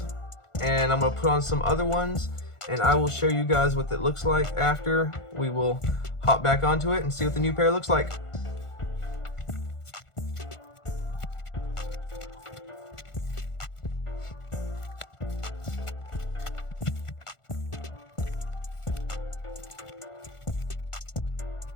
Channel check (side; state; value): right; late; 1.4 ms